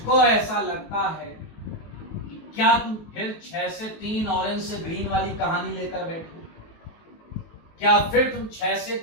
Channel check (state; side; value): late; right; 19 ms